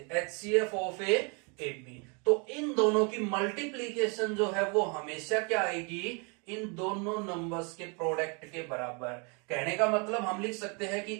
एचसीएफ ऑफ ए बी। तो इन दोनों की मल्टीप्लीकेशन जो है वो हमेशा क्या आएगी, इन दोनों नंबर्स के प्रोडक्ट के बराबर। कहने का मतलब हम लिख सकते हैं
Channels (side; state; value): left; quieter; 33.5 dB